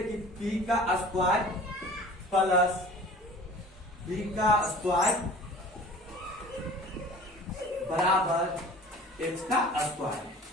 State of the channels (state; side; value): normal; both; correlation 0.44